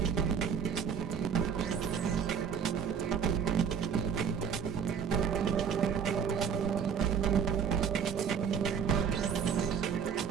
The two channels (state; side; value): quieter; left; 7.1 dB